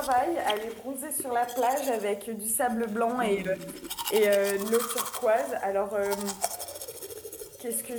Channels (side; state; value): both; identical; correlation 1.00